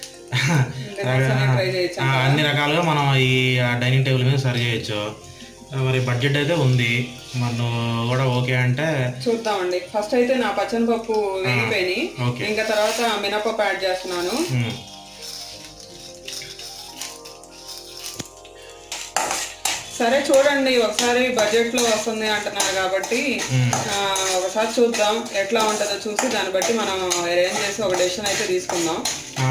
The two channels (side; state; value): both; identical; correlation 1.00